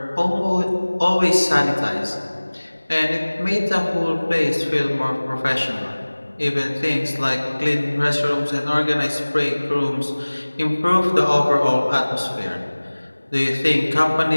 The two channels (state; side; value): inverted; both; correlation -1.00